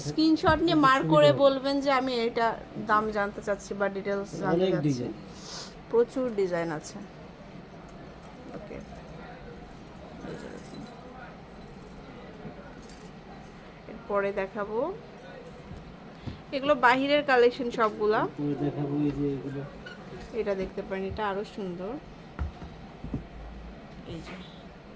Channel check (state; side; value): identical; both; correlation 1.00